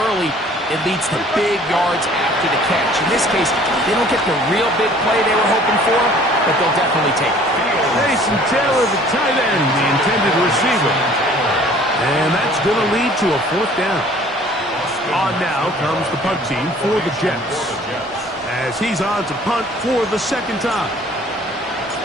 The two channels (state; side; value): normal; both; correlation 0.53